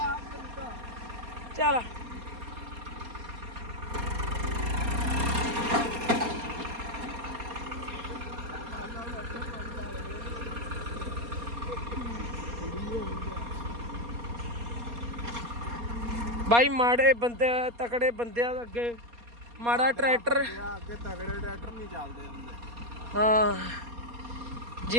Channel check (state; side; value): late; left; 4.2 ms